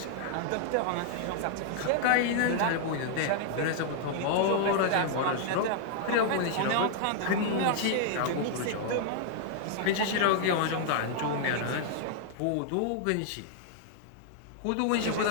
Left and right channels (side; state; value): both; different; correlation -0.01